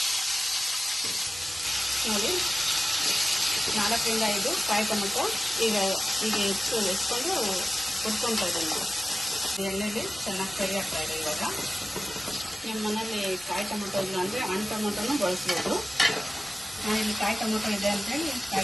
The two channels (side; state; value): both; normal; correlation 0.96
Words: ನೋಡಿ, 4 ರಿಂದ 5 ಕಾಯಿ ಟೊಮೊಟೊ ಈಗ ಎತ್ಕೊಂಡು ಹುರ್ಕೊಳ್ತಾ ಇದ್ದೀನಿ. ಎಣ್ಣೆಲಿ ಚೆನ್ನಾಗಿ ಫ್ರೈ ಆಗ್ತಾ ಇದೆ. ಇವಾಗ ನಿಮ್ಮ ಮನೇಲಿ ಕಾಯಿ ಟೊಮೊಟೊ ಇಲ್ಲ ಅಂದರೆ ಹಣ್ಣು ಟೊಮೊಟೊನೂ ಬಳಸ್ಬೋದು. ನಾನಿಲ್ಲಿ ಕಾಯಿ ಟೊಮೊಟೊ ಇದೆ ಅಂತೇಳಿ